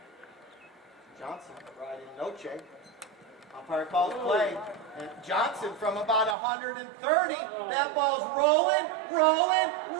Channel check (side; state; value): left; drops out; at 6.4 s